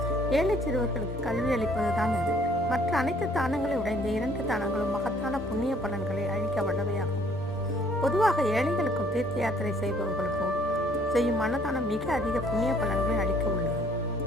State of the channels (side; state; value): both; normal; correlation 0.61